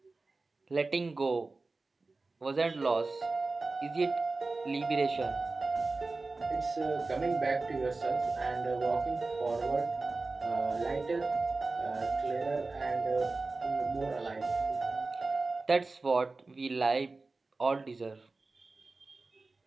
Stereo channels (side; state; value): left; quieter; 3.6 dB